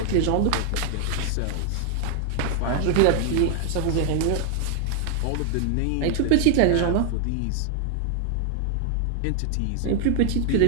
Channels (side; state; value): both; different; correlation 0.00